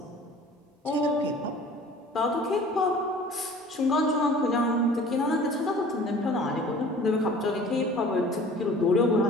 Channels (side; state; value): both; normal; correlation 0.47